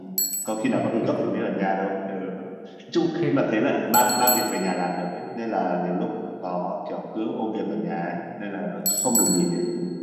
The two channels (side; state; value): both; identical; correlation 1.00